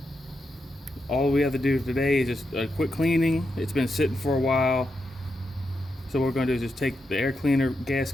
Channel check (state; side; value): normal; both; correlation 0.85